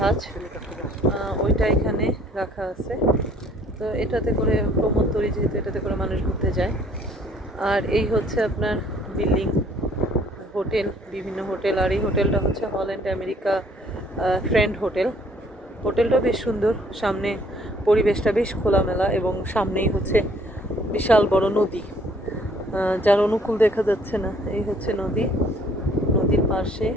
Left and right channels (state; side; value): normal; both; correlation 0.60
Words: ওইটা এখানে রাখা আছে। তো এটাতে করে প্রমোদতরী, যেহেতু এটাতে করে মানুষ ঘুরতে যায়। আর এই হচ্ছে আপনার বিল্ডিং, হোটেল, বিভিন্ন হোটেল। আর এই হোটেলটা হচ্ছে হল্যান্ড আমেরিকা ফ্রেন্ড হোটেল। হোটেলটা বেশ সুন্দর, সামনে পরিবেশটা বেশ খোলামেলা এবং সামনেই হচ্ছে বিশাল বড় নদী, যার অনুকূল দেখা যাচ্ছে না। এই হচ্ছে নদীর পাশে।